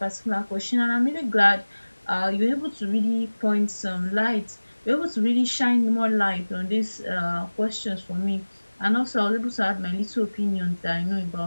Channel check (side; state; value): both; inverted; correlation -1.00